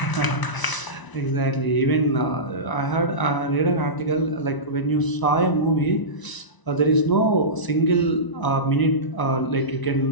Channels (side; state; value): right; late; 1.0 ms